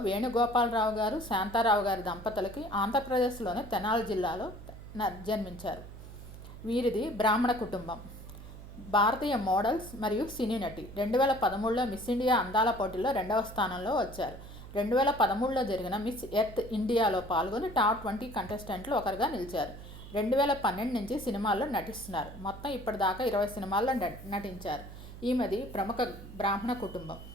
వేణుగోపాలరావు గారు, శాంతారావు గారి దంపతులకి ఆంధ్రప్రదేశ్లోని తెనాలి జిల్లాలో జన్మించారు. వీరిది బ్రాహ్మణ కుటుంబం. భారతీయ మోడల్స్ మరియు సినీ నటి. 2013లో మిస్ ఇండియా అందాల పోటీలో 2వ స్థానంలో వచ్చారు. 2013లో జరిగిన మిస్ ఎర్త్ ఇండియాలో పాల్గొని టాప్ 20 కంటెస్టెంట్లు ఒకరుగా నిలిచారు. 2012 నుంచి సినిమాల్లో నటిస్తున్నారు. మొత్తం ఇప్పటిదాకా 20 సినిమాల్లో నటించారు. ఈమెది ప్రముఖ బ్రాహ్మణ కుటుంబం.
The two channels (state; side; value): noise; right; hum, 14 dB below the sound